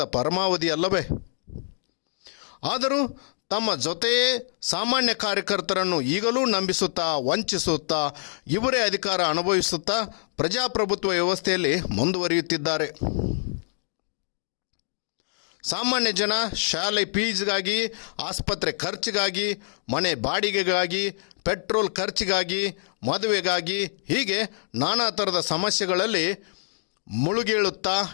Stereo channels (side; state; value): right; silent; digital silence